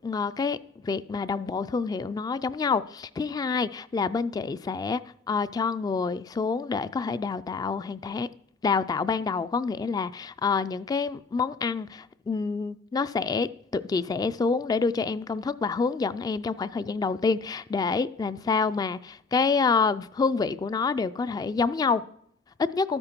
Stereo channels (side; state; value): right; quieter; 4.5 dB